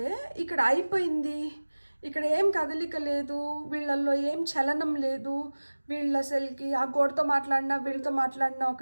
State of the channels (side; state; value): both; inverted; correlation -1.00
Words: ఇక్కడ అయిపోయింది, ఇక్కడ ఏం కదలిక లేదు, వీళ్ళల్లో ఏం చలనం లేదు, వీళ్ళు అసలుకి ఆ గోడతో మాట్లాడినా వీళ్ళతో మాట్లాడినా